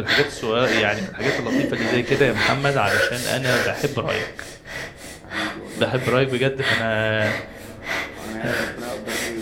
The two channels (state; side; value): identical; both; correlation 1.00